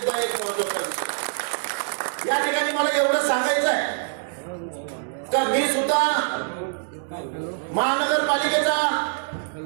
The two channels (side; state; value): left; silent; digital silence